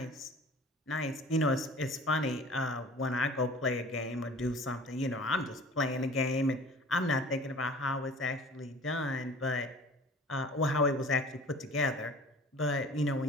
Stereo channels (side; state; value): both; normal; correlation 0.44